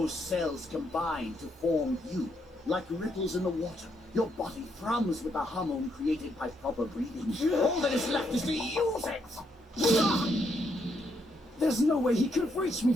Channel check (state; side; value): normal; both; correlation 0.76